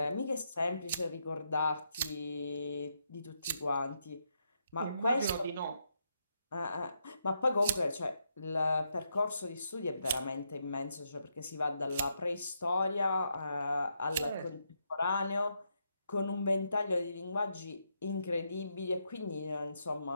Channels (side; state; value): both; inverted; correlation -0.80